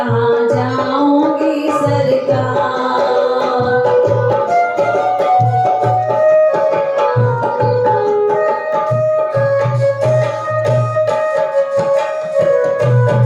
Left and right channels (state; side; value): identical; both; correlation 1.00